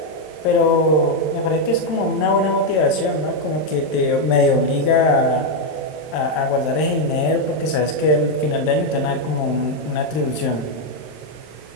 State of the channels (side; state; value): right; late; 26 ms